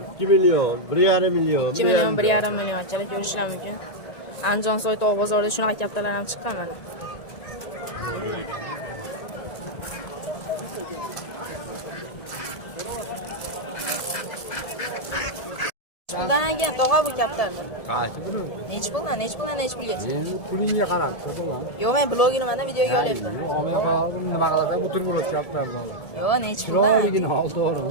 2 million, 1,5 million. 2 million, 1,5 million chalar ko'rishlar mumkin. Andijon Soytog' bozorida shunaqa kaptarlar ham chiqqan mana. Puldan ekan tog'a bu kaptarlar. Qancha buni? Nechi puldan, nechi puldan, nechi pulgacha? Pulingga qarab, ko'rdingmi? Yo'q, men blogini mana videoga olyapman. Nima qiladi? Butun bo'lib kaptardan. Yo'q, nechi puldan? Chiroyligini ol, to'g'rimi?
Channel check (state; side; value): late; right; 1.7 ms